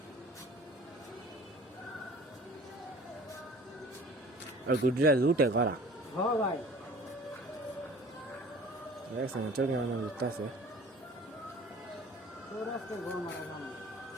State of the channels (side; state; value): both; normal; correlation 0.46